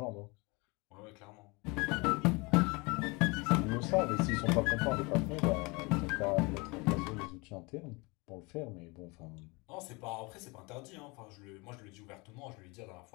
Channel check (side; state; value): right; quieter; 27.2 dB